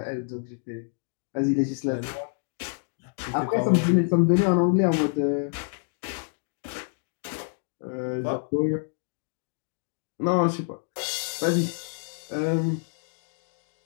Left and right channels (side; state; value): right; silent; digital silence